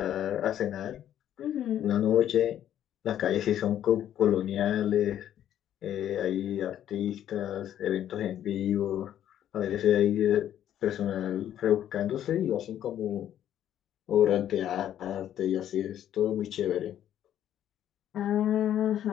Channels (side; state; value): right; quieter; 11.0 dB